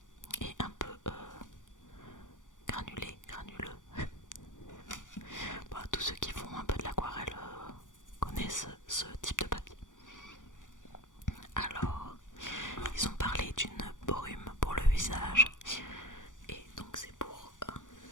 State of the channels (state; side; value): late; right; 0.87 ms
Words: et un peu granuleux. Bon, tous ceux qui font un peu de l'aquarelle connaissent ce type de papier. Alors, ils ont parlé d'une brume pour le visage et donc c'est pour